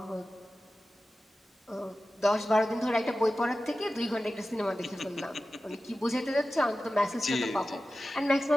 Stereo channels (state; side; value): normal; both; correlation 0.94